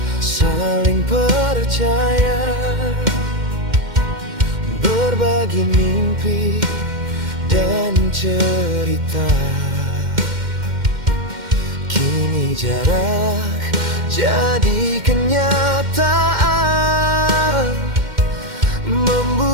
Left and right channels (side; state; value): left; late; 2.1 ms